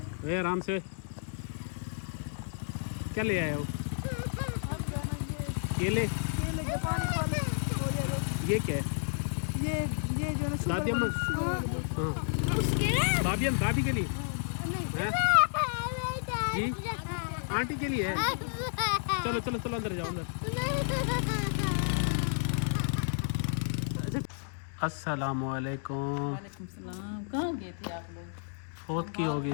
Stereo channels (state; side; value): silent; right; digital silence